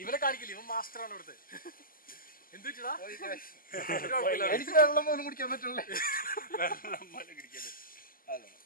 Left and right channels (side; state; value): right; late; 0.41 ms